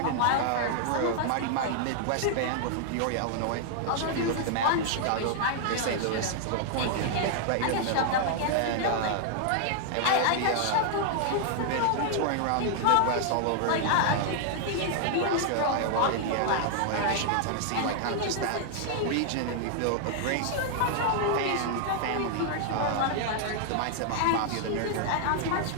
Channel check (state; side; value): different; both; correlation 0.00